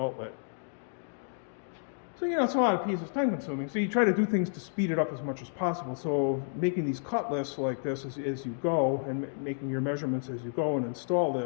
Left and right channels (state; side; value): silent; right; digital silence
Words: So, it's a lot of pieces, time consuming. So you try to do things to speed it up as much as possible. So making these cut lists like this as you go, and making your measurements as you go and install